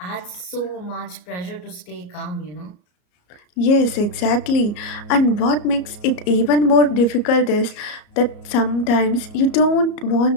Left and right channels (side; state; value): right; late; 33 ms